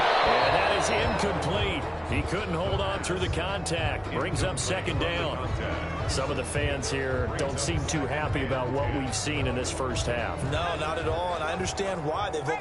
And that is incomplete. He couldn't hold on through the contact. Brings up second down. Some of the fans here don't seem too happy about what we've seen in this first half. No, not at all, and I understand why. They've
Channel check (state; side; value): identical; both; correlation 1.00